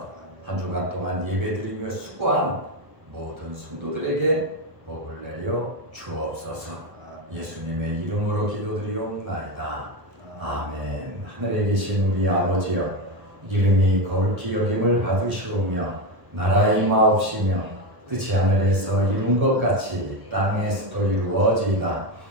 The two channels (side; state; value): left; late; 1.4 ms